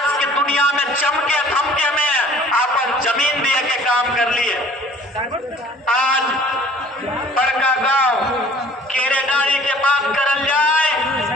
के दुनिया में चमके धमके में अपन जमीन दिए के काम कर लिए। आज बड़का गांव केरेडारी के बात करल जाए,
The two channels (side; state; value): both; normal; correlation 0.51